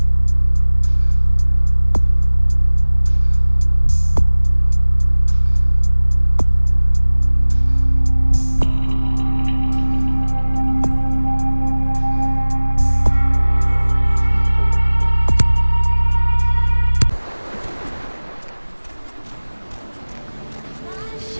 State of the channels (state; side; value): inverted; both; correlation -1.00